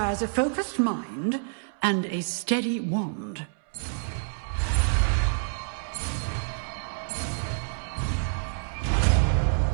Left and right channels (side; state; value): left; silent; 60 dB below the other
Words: a focused mind and a steady wand.